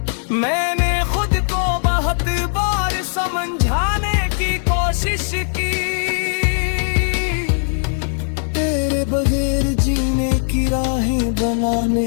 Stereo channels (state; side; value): silent; right; digital silence